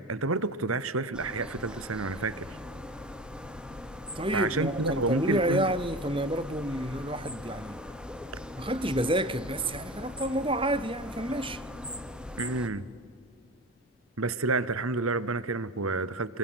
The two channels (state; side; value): normal; both; correlation 0.31